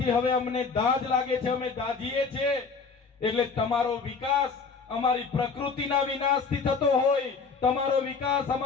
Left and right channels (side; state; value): right; quieter; 5.0 dB